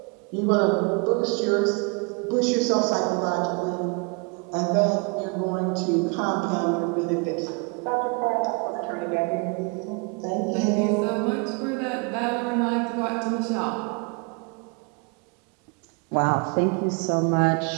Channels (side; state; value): left; quieter; 32.3 dB